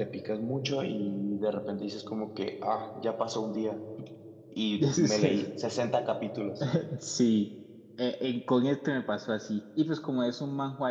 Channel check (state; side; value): identical; both; correlation 1.00